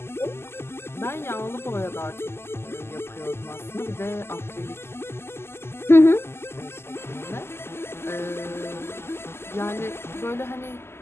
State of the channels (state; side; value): late; right; 0.12 ms